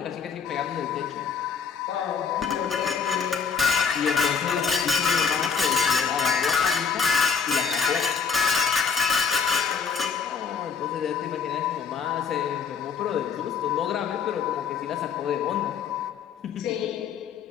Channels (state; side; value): quieter; right; 6.3 dB